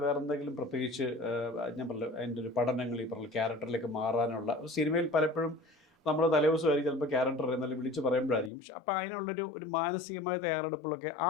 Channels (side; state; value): right; drops out; at 8.5 s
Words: വേറെ എന്തെങ്കിലും പ്രത്യേകിച്ച് ഞാൻ പറഞ്ഞു അതിൻ്റെ ഒരു പഠനങ്ങൾ, ഈ പറഞ്ഞ ക്യാരക്ടറിലേക്ക് മാറാനുള്ള സിനിമയിൽ പലപ്പോഴും നമ്മൾ തലേദിവസമായിരിക്കും ചിലപ്പോൾ ക്യാരക്ടർ എന്നാലും വിളിച്ച് പറയുമ്പോഴായിരിക്കും. പക്ഷെ അപ്പോൾ അതിനുള്ളൊരു മാനസികമായ തയ്യാറെടുപ്പുകളൊക്കെ ആ